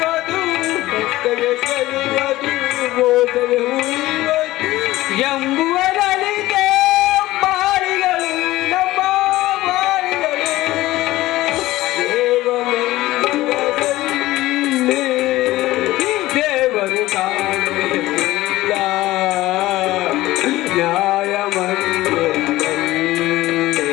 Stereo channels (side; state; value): right; quieter; 17.2 dB